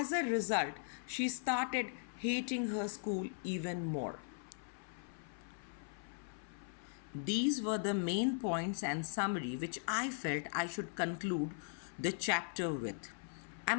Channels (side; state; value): right; silent; 52 dB below the other